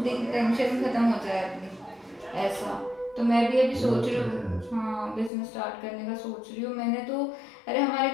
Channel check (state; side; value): drops out; right; at 5.3 s